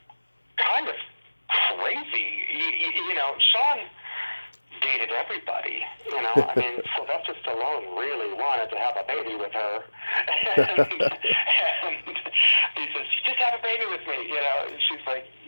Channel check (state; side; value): inverted; both; correlation -1.00